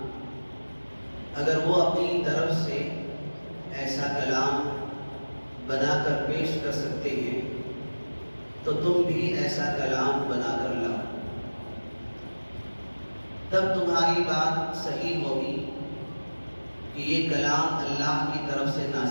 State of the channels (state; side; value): inverted; both; correlation -1.00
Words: اگر وہ اپنی طرف سے ایسا کلام بنا کر پیش کر سکتے ہیں تو تم بھی ایسا کلام بنا کر لاؤ، تب تمہاری بات صحیح ہوگی کہ یہ کلام اللہ کی طرف سے